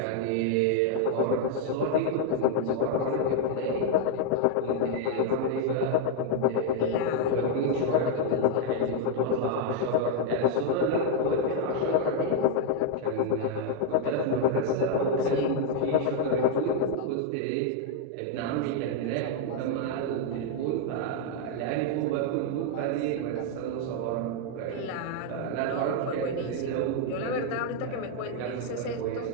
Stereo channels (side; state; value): both; different; correlation 0.00